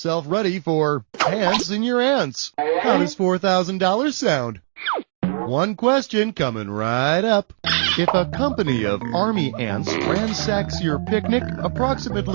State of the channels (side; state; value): left; silent; digital silence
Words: ready for ants in your ants. How does $4,000 sound? One question coming right up. If a company of army ants ransacks your picnic,